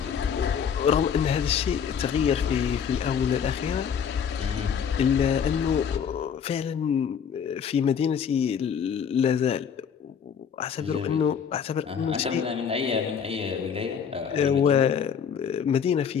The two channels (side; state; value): right; quieter; 7.4 dB